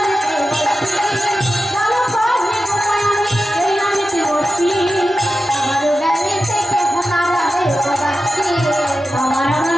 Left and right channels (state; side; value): normal; both; correlation 0.91